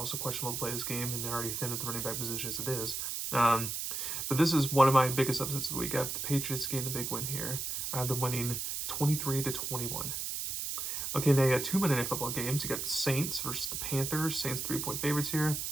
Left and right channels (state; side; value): noise; right; hiss, 3 dB below the sound